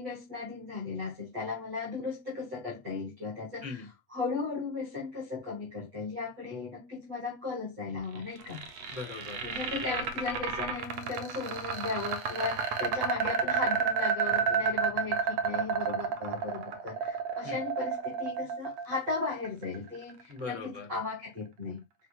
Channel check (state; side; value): late; left; 8.4 ms